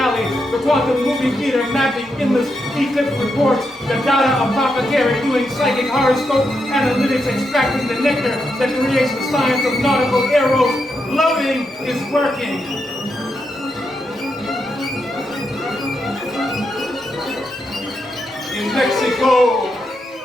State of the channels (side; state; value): both; normal; correlation 0.83